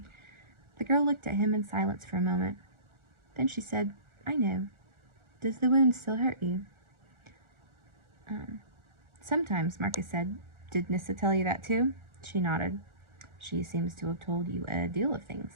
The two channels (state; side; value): late; left; 1.4 ms